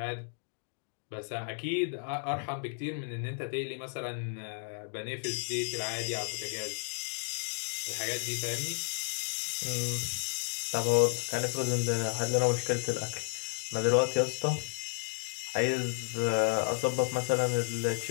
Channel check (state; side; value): silent; right; digital silence